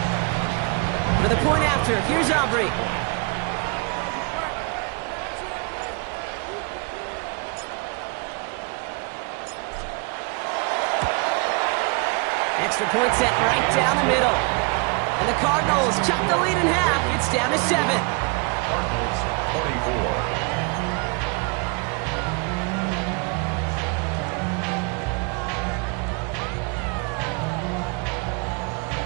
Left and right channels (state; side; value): quieter; left; 32.7 dB